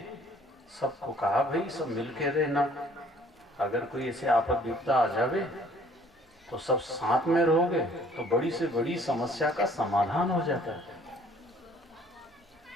सबको कहा भाई सब मिलके रहना, अगर कोई ऐसे आपद विपदा आ जावे तो सब साथ में रहोगे तो बड़ी से बड़ी समस्या का समाधान हो जाता है,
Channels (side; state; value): both; normal; correlation 0.58